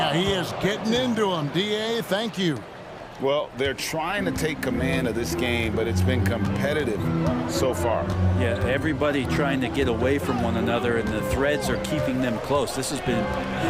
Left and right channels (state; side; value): identical; both; correlation 1.00